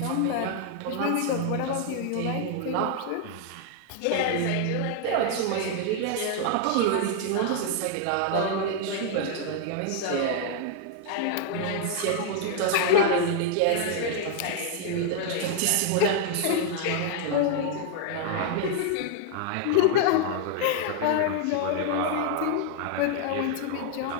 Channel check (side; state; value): both; different; correlation 0.00